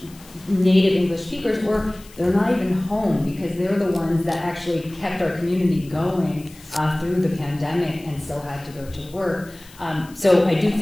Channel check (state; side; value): noise; left; hiss, 23 dB below the sound